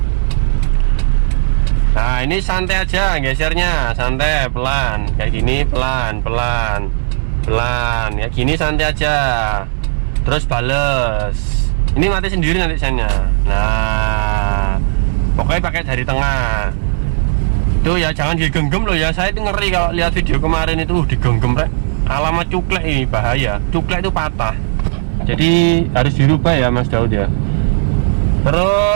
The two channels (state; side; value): silent; left; 67 dB below the other